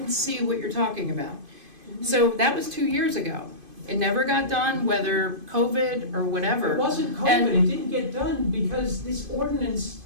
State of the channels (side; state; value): left; late; 2.5 ms